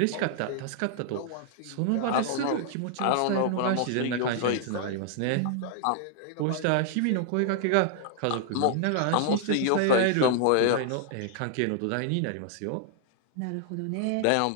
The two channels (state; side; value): different; both; correlation -0.01